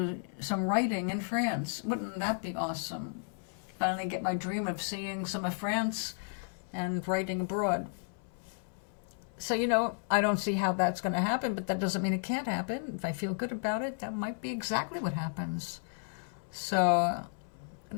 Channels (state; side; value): silent; right; 56 dB below the other